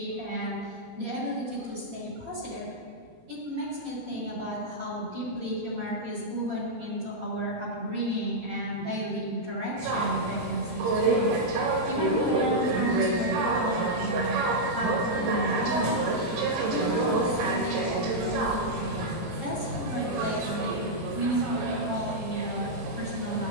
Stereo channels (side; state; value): left; late; 18 ms